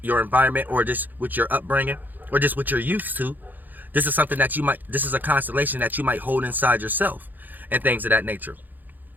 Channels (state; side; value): late; left; 0.086 ms